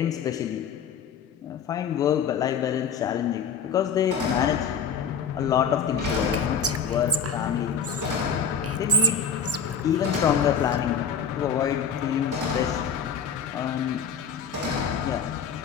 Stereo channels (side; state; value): right; quieter; 6.2 dB